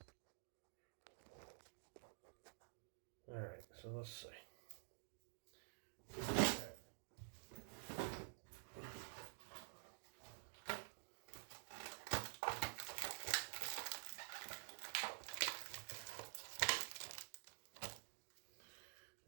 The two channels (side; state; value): left; silent; digital silence